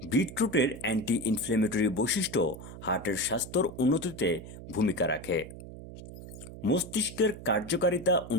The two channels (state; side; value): noise; right; hum, 13 dB below the sound